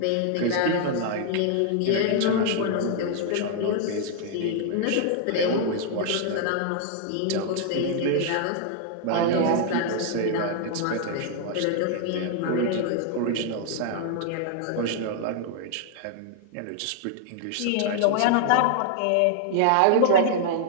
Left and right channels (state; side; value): different; both; correlation -0.01